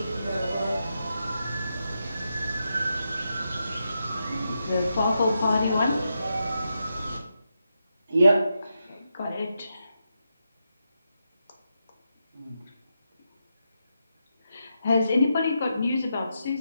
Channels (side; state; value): both; inverted; correlation -0.86